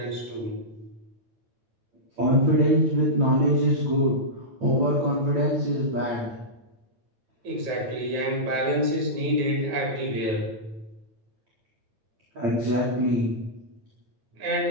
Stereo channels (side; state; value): left; late; 9.4 ms